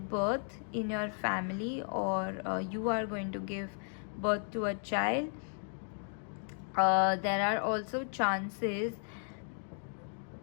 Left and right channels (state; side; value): silent; right; 55 dB below the other